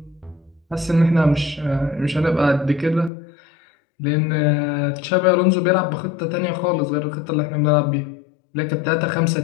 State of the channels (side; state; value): right; drops out; at 3.1 s